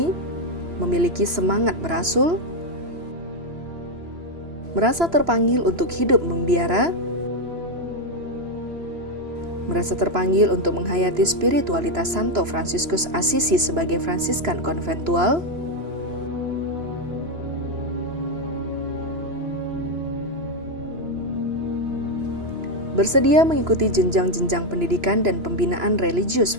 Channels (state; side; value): late; left; 3.0 ms